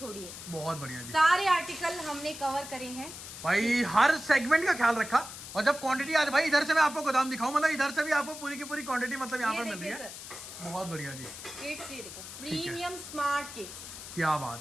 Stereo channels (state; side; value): noise; left; hiss, 12 dB below the sound